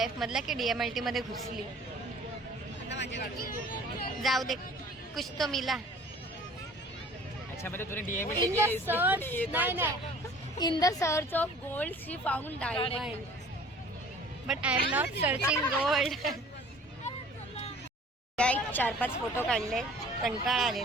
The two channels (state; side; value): normal; both; correlation 0.49